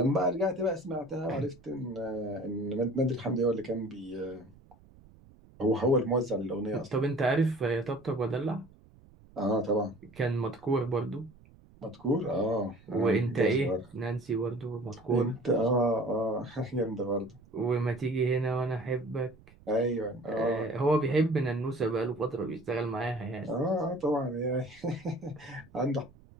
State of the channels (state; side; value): noise; right; rumble, 25 dB below the sound